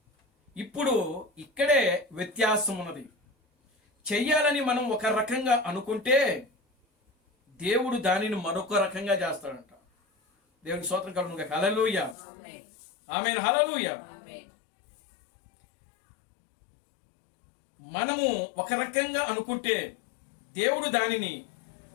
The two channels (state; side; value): drops out; right; at 12.2 s